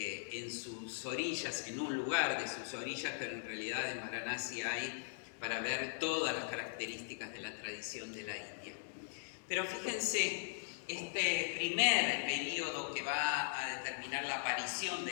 sus orillas, en un lugar de sus orillas, pero en realidad en Varanasi hay para ver todas las características de la tradición de la India. Pero fíjense, este primer periodo que va a determinar la aparición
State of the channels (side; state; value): right; silent; digital silence